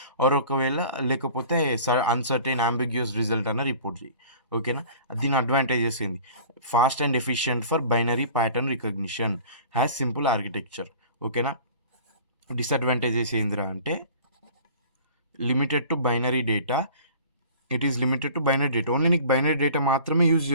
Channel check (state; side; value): inverted; both; correlation -0.45